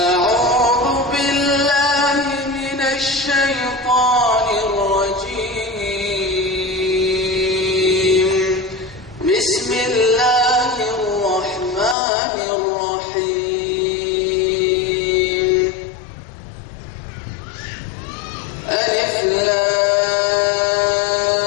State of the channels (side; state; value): right; drops out; at 12.0 s